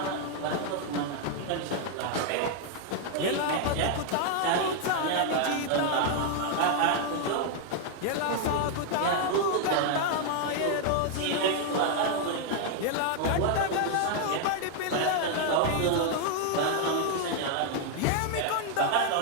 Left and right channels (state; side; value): different; both; correlation 0.00